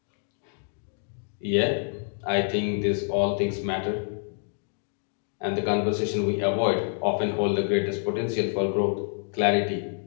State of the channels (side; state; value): right; silent; digital silence